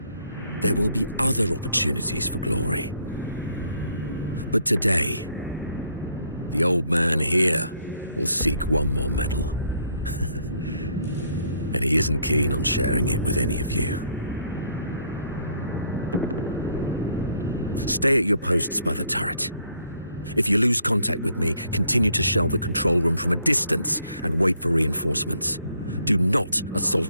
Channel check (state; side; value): inverted; both; correlation -0.68